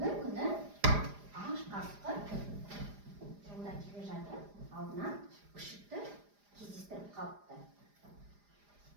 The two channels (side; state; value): left; late; 4.9 ms